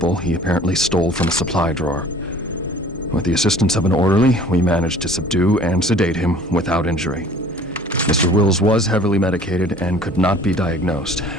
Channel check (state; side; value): normal; both; correlation 0.49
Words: he apparently stole from a supply drawer. With the assistance of an orderly, we managed to subdue and sedate him without injury. Mr. Wills was heavily medicated and could not be diagnosed,